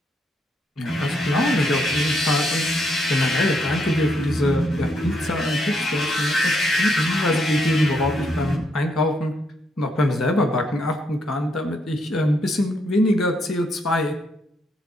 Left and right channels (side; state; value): both; normal; correlation 0.75